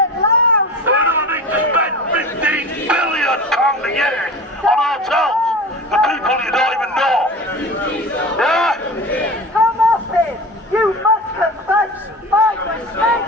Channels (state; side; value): normal; both; correlation 0.33